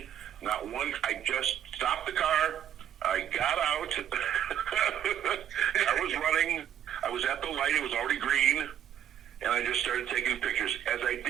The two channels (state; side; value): quieter; left; 10.1 dB